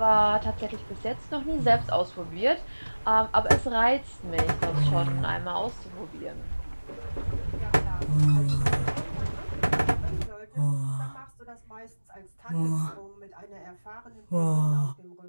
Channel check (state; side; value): inverted; both; correlation -1.00